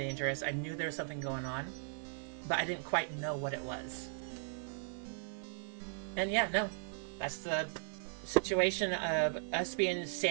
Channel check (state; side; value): silent; left; digital silence